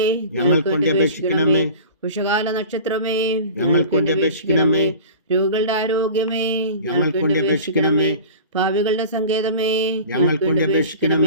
ഞങ്ങൾക്ക് വേണ്ടി അപേക്ഷിക്കണമേ. ഉഷകാല നക്ഷത്രമേ, ഞങ്ങൾക്ക് വേണ്ടി അപേക്ഷിക്കണമേ. രോഗികളുടെ ആരോഗ്യമേ, ഞങ്ങൾക്ക് വേണ്ടി അപേക്ഷിക്കണമേ. ഭാവികളുടെ സങ്കേതമേ, ഞങ്ങൾക്ക് വേണ്ടി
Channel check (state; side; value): inverted; both; correlation -0.39